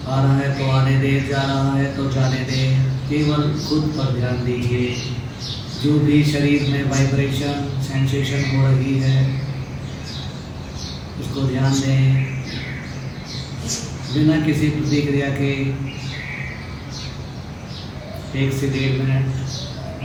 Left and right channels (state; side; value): identical; both; correlation 1.00